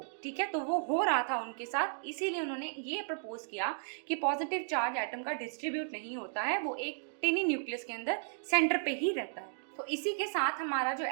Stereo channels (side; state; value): left; silent; digital silence